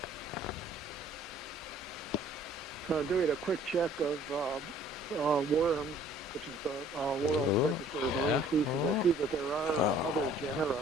So doing a quick check of worms, which is the world register of marine species, I see that there are other genera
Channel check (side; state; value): both; normal; correlation 0.55